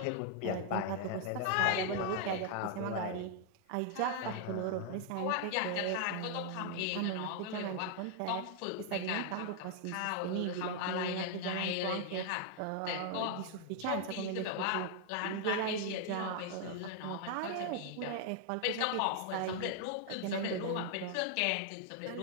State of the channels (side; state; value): both; different; correlation 0.00